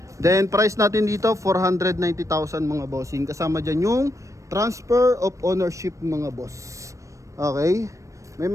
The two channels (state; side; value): late; left; 0.15 ms